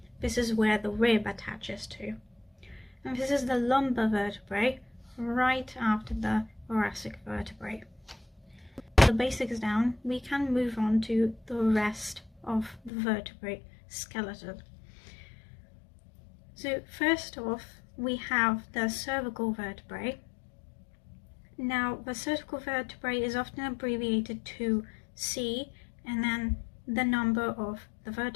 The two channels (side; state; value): right; drops out; at 12.9 s